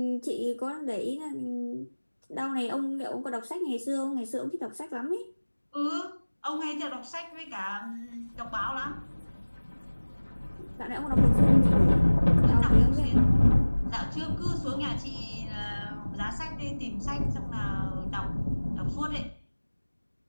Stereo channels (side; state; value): both; inverted; correlation -1.00